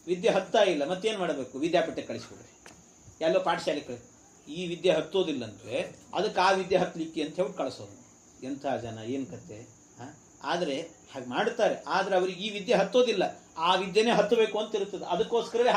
ವಿದ್ಯೆ ಹತ್ತಾ ಇಲ್ಲ, ಮತ್ತೇನ್ ಮಾಡಬೇಕು, ವಿದ್ಯಾಪೀಠಕ್ಕೆ ಕಳಿಸ್ಬಿಡ್ರಿ, ಎಲ್ಲೋ ಪಾಠಶಾಲೆ ಕಳಿಸಿ. ಈ ವಿದ್ಯೆ ಹತ್ತೋದಿಲ್ಲಂದ್ರೆ ಅದಕ್ಕೆ ಆ ವಿದ್ಯೆ ಹತ್ತಲಿಕ್ಕೆ ಅಂತ ಹೇಳಿ ಕಳಿಸೋದು. ಎಂಥ ಜನ, ಏನ್ ಕತೆ. ಆದ್ರೆ ಹಾಗೆ ಮಾಡ್ತಾರೆ, ಆದ್ರೆ ಅವ್ರಿಗೆ ಈ ವಿದ್ಯೆ ಹತ್ತೋದಿಲ್ಲ, ಆ ವಿದ್ಯೆನೇ ಹತ್ತಬೇಕು ಅಂತ ಇರ್ತದೆ. ಅದಕ್ಕೋಸ್ಕರವೇ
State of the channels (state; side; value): identical; both; correlation 1.00